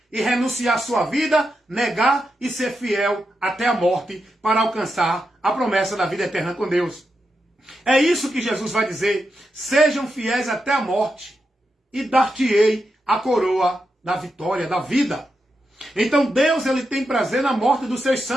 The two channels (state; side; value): normal; both; correlation 0.86